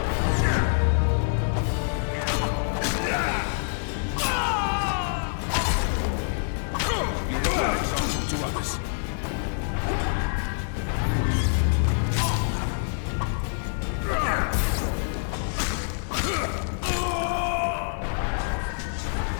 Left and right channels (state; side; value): silent; right; digital silence